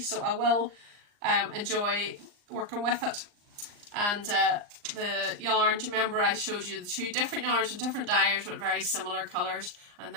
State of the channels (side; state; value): left; late; 39 ms